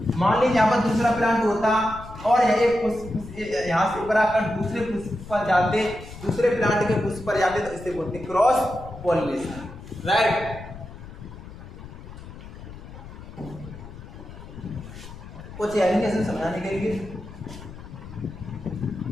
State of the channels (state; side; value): noise; left; rumble, 14 dB below the sound